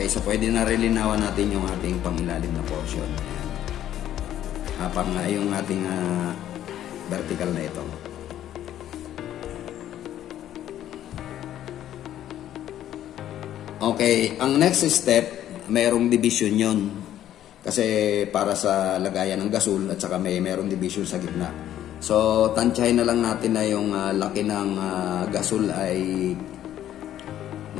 so pwede na rin linawan natin yung ating pangilalim na portion. Yung ating vertical na ito. Okay, ang next step, mayroong division yon. Kasi para sa lagayan ng gasol at saka mayroong division sa gitna. So, tansyahin na lang natin na yung laki ng gasol ay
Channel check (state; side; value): quieter; right; 11.7 dB